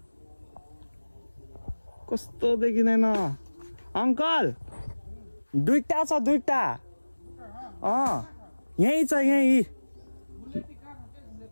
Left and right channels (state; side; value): inverted; both; correlation -1.00